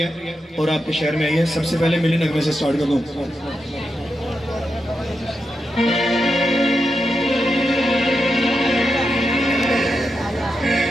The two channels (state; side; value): normal; both; correlation 0.86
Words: और आपके शहर में आई है। सबसे पहले मिली नगमे से स्टार्ट कर दूं।